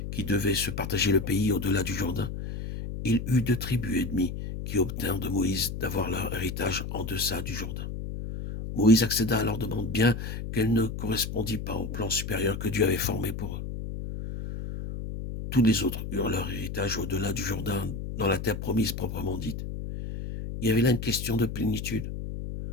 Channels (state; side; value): noise; left; hum, 6 dB below the sound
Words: qui devaient se partager le pays au-delà du Jourdain. Il eut 2 tribus et demie qui obtinrent de Moïse d'avoir leur héritage en deçà du Jourdain. Moïse accéda à leur demande, bien qu'elle ne correspondît pas au plan supérieur que Dieu avait formé pour eux. Tous les autres eurent leur héritage au-delà du Jourdain, dans la terre promise proprement dite. Il y avait là une question de plénitude.